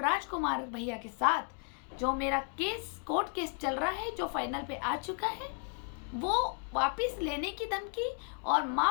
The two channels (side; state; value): right; quieter; 38.3 dB